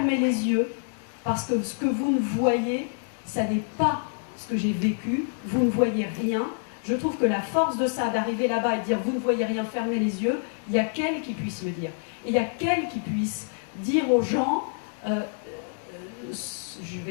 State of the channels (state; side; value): silent; right; digital silence